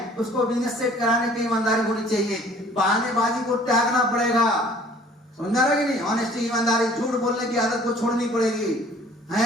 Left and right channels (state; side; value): normal; both; correlation 0.53